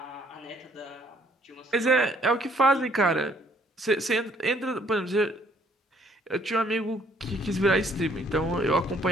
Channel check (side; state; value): both; normal; correlation 0.63